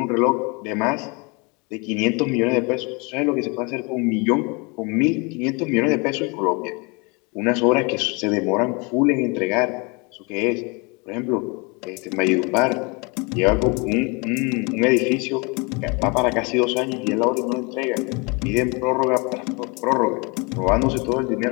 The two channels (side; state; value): right; quieter; 29.7 dB